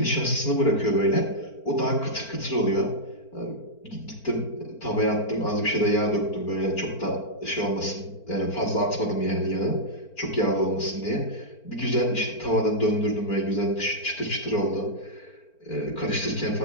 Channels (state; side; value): late; right; 4.4 ms